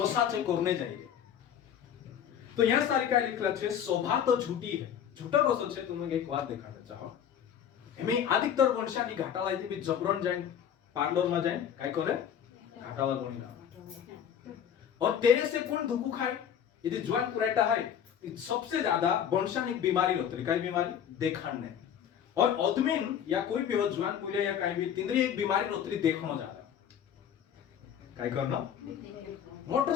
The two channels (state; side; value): quieter; right; 8.9 dB